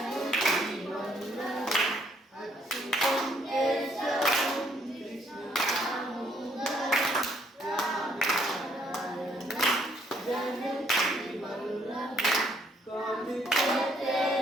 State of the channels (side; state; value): both; normal; correlation 0.67